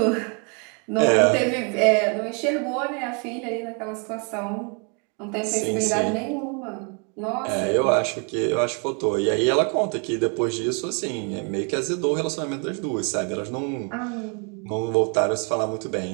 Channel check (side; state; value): left; quieter; 37.2 dB